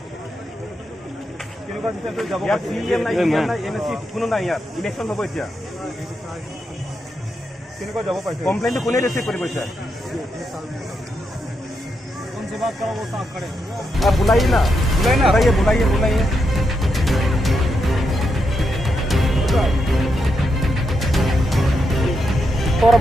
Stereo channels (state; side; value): normal; both; correlation 0.83